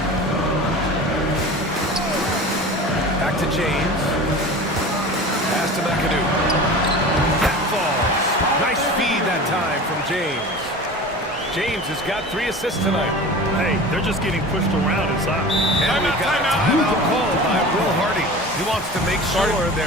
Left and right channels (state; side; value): normal; both; correlation 0.36